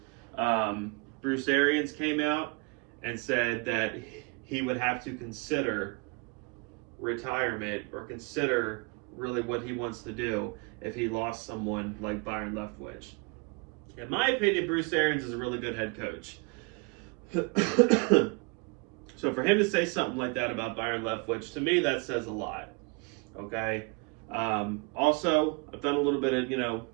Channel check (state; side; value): quieter; left; 30.8 dB